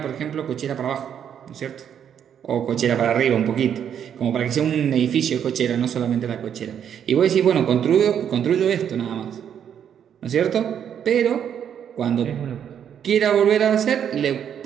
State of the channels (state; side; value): quieter; left; 8.8 dB